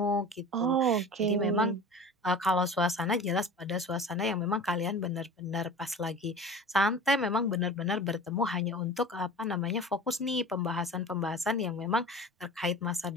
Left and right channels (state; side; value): normal; both; correlation 0.37